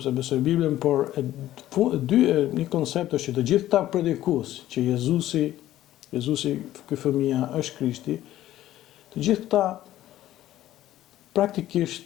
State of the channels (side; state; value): right; quieter; 13.9 dB